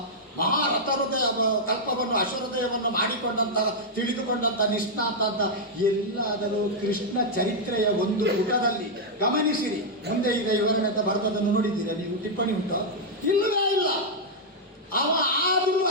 ಮಹಾರಥ ಹೃದಯ ಕಲ್ಪವನ್ನು ಅಶ್ವಹೃದಯವನ್ನು ಮಾಡಿಕೊಂಡಂತ, ತಿಳಿದುಕೊಂಡಂತ ನಿಷ್ಣಾತ ಅಂತ ಎಲ್ಲಾದರೂ ಕೃಷ್ಣ ಚರಿತ್ರೆಯ ಒಂದು ಪುಟದಲ್ಲಿ ಗಮನಿಸಿರಿ. ಮುಂದೆ ಇದೆ ವಿವರಣೆ ಅಂತ ಬರೆದದನ್ನು ನೋಡಿದ್ದೀರಾ ನೀವು? ಟಿಪ್ಪಣಿ ಉಂಟು? ಇಲ್ಲವೇ ಇಲ್ಲ. ಅವ ಆದರೂ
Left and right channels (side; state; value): both; normal; correlation -0.05